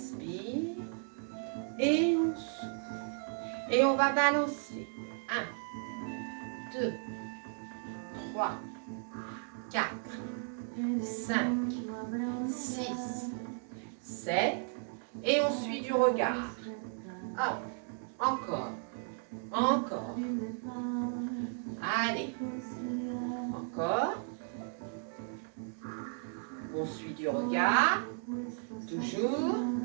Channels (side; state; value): left; silent; 54 dB below the other